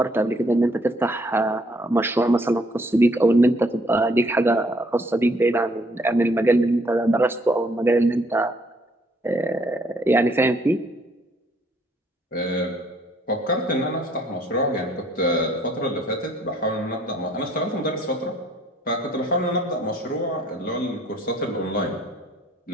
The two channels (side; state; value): both; normal; correlation 0.64